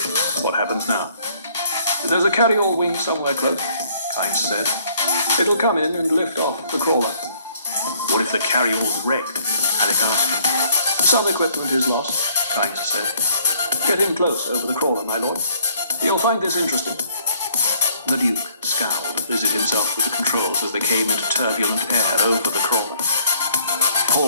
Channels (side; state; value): both; inverted; correlation -0.62